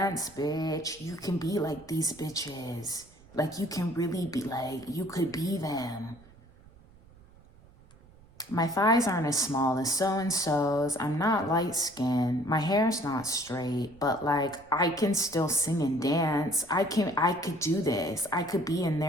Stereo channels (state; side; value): noise; right; rumble, 25 dB below the sound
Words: bitch. You can be like these bitches. Like, you can really be like, you could be them. My thighs aren't as small as so-and-so's. I'm not light-skinned. My hair's not straight, but like, I can still sing and dance. I could do this. I could be in